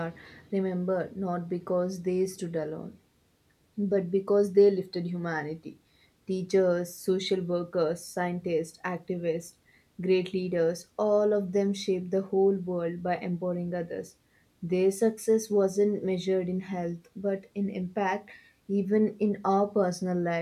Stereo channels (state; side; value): identical; both; correlation 1.00